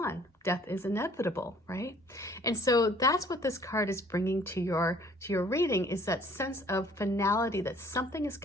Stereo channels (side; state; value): both; normal; correlation 0.56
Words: Death is inevitable, right? And so that's what this card is bringing to your reading, is that sense of finality, that something is